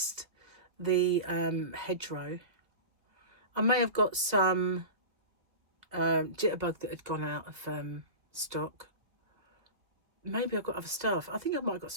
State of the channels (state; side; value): late; left; 2.0 ms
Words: the hedgerow. I may have got some jitterbug that had gone out of stock. Maybe I've got other stuff. I think I might have got